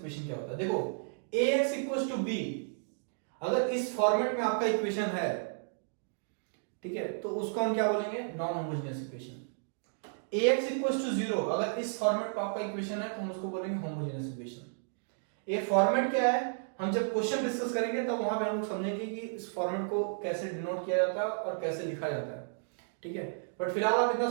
क्या होता है। देखो, ax इक्वल्स टू b, अगर इस फॉर्मेट में आपका इक्वेशन है, ठीक है, तो उसको हम क्या बोलेंगे, non homogeneous equation. ax equals to 0, अगर इस फॉर्मेट पर आपका इक्वेशन है तो हम उसको बोलेंगे होमोजेनियस इक्वेशन। ये फॉर्मेट क्या है, हम जब क्वेश्चन डिस्कस करेंगे तब वहां पे हम लोग समझेंगे कि इस फॉर्मेट को कैसे डिनोट किया जाता है और कैसे लिखा जाता है। ठीक है, बट फिलहाल आप इतना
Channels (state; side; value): silent; left; digital silence